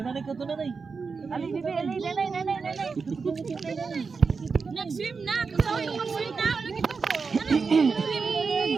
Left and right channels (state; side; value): quieter; left; 5.0 dB